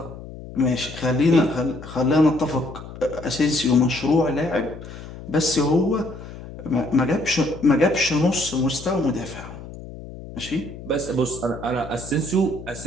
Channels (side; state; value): left; noise; hum, 13 dB below the sound